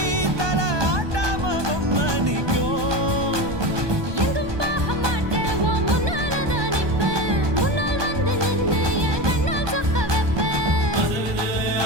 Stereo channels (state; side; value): late; left; 1.2 ms